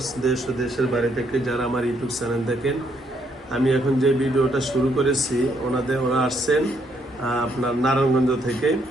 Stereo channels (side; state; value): both; normal; correlation 0.72